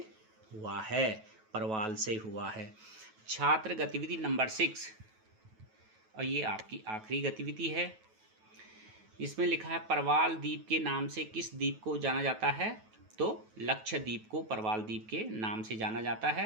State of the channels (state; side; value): late; left; 9.2 ms